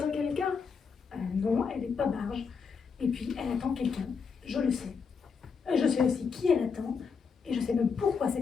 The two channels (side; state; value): right; quieter; 5.7 dB